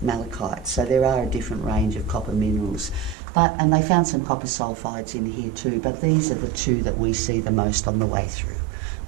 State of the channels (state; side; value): drops out; left; at 3.2 s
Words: malachite. So there are a different range of copper minerals. And they found some copper sulfides in here too, but these are the two that we see the most on the way through.